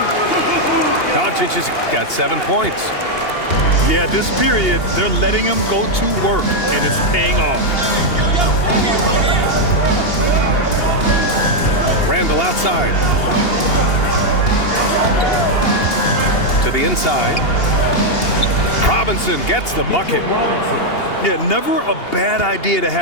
Doncic has got 7 points. Yeah, this period, they're letting him go to work, and it's paying off. Randall outside. To the inside. Robinson gets the bucket. Yeah, never a bad idea to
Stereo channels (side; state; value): right; late; 2.8 ms